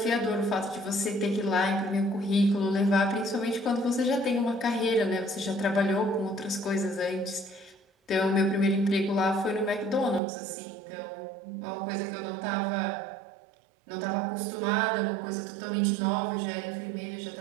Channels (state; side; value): drops out; left; at 10.2 s